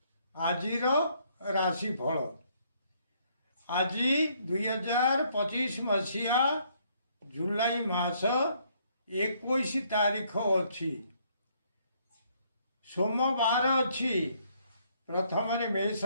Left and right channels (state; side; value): inverted; both; correlation -0.68